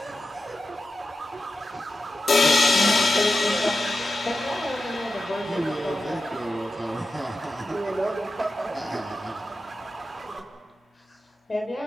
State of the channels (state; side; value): normal; both; correlation 0.91